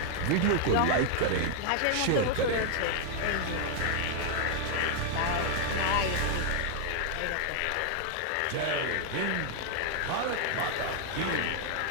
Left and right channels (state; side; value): different; both; correlation 0.00